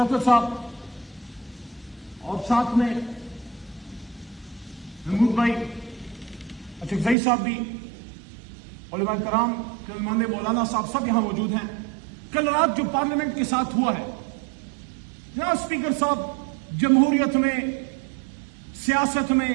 صاحب اور ساتھ میں محمود بھائی، اچھا صاحب بھی، علماء کرام، علماء مولانا صاحب سب یہاں موجود ہیں. کل رات جو پارلیمنٹ کے ساتھ ہوا ہے، جناب اسپیکر صاحب، جمہوریت میں، سیاست میں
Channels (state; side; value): drops out; left; at 7.2 s